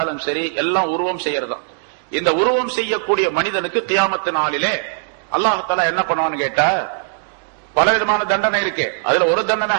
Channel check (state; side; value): silent; left; digital silence